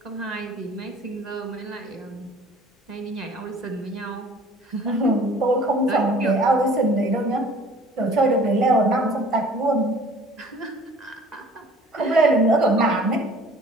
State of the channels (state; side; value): normal; both; correlation 0.50